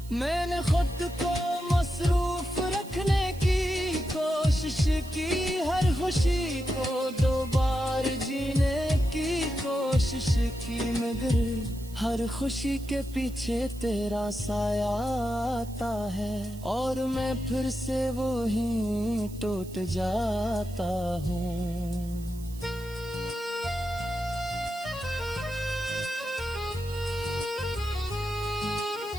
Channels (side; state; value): right; noise; hiss, 20 dB below the sound